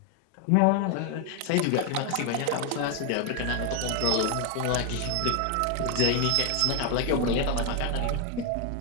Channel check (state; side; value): different; both; correlation 0.01